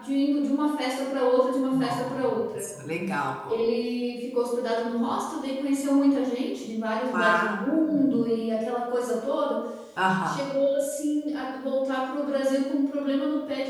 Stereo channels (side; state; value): both; identical; correlation 1.00